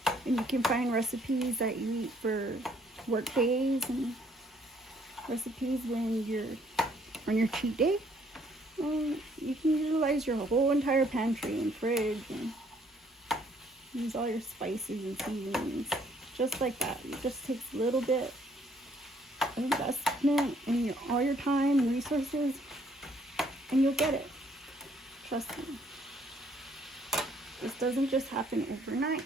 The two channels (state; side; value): normal; both; correlation 0.65